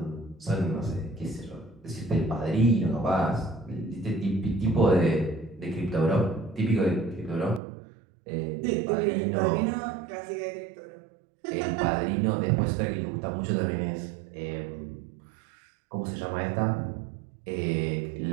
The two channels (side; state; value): left; drops out; at 7.6 s